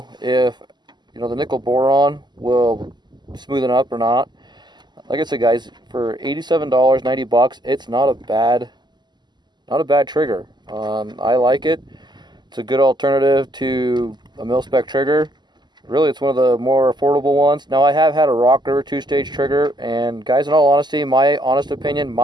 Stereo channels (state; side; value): late; left; 0.21 ms